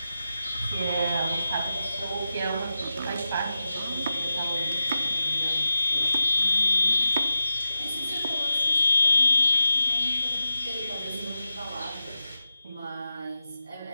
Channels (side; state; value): both; inverted; correlation -0.89